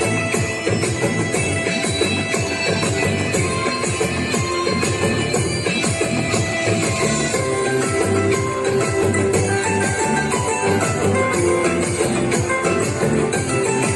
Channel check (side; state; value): both; identical; correlation 1.00